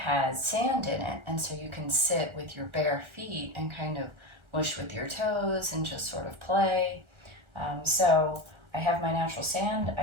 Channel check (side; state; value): left; late; 1.3 ms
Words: sand in it, and so you can sit with your bare feet and kind of mush with your toes and just sort of play. So I have my natural sand,